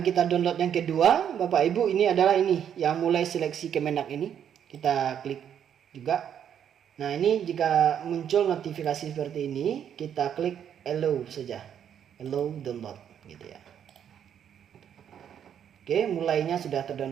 kita download yang kedua Bapak Ibu ini adalah ini, yang mulai seleksi Kemenak ini. Kita klik juga. Nah, ini jika muncul notifikasi seperti ini, kita klik allow saja, allow download gitu ya. Oke, mulainya sudah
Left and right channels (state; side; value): quieter; left; 9.0 dB